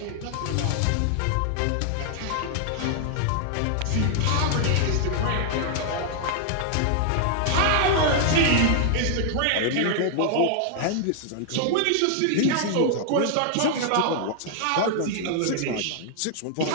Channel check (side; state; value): both; different; correlation 0.00